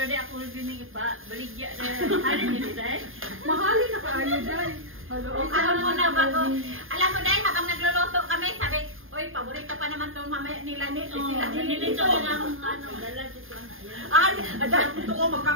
dahil. Ako rin yung ipa-baligya dahil. Halin nyo dahil. Mahalin na kaayo dahil. Hello, Alam mo na bago. Alam mo dahil habang nagluluto kami, sabi, oy, paborito pa naman itong mamaya nila ni sila. Nilito ko na akong dala dito na. Ay, dahil gusto ko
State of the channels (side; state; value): left; late; 0.59 ms